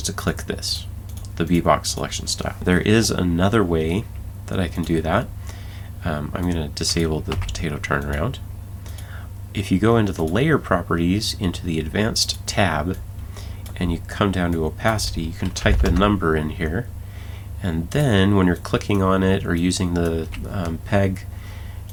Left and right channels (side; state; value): both; identical; correlation 1.00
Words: to click this, the V-Box selection style. There is another way that I can do that. I'm going to disable the potato turnaround. If you go into the layer properties, into the advanced tab, and you come down to opacity, you can type a number in here, and then when you're clicking on it or using the peg,